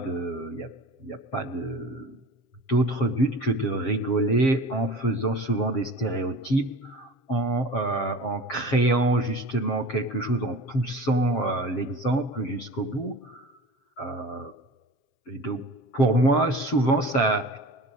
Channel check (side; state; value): right; late; 7.5 ms